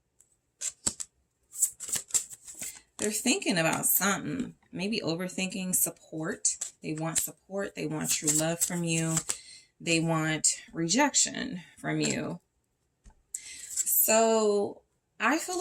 They're thinking about something, maybe overthinking. Support. They want support. They want true love from you. They want rejection from you. So I feel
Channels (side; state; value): both; identical; correlation 1.00